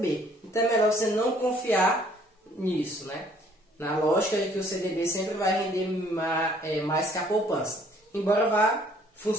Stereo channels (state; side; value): normal; both; correlation 0.60